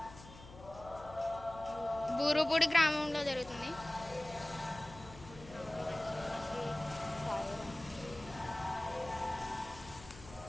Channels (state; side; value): noise; left; hum, 17 dB below the sound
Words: బూరుపూడి గ్రామంలో జరుగుతుంది.